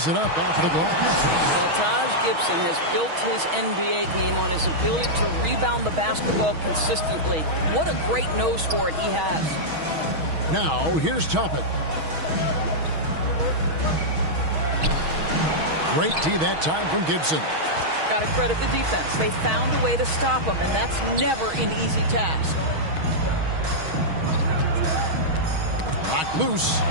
it up off the glass. Well, Taj Gibson has built his NBA game on his ability to rebound the basketball consistently. What a great nose for it he has. Now, here's Toppin. Great D that time from Gibson. Got to credit the defense. They found a way to stop him, and that's never an easy task. Knocked loose.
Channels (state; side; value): late; left; 6.3 ms